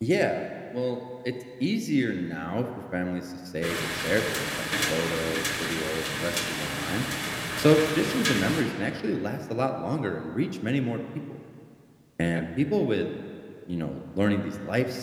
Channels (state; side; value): identical; both; correlation 1.00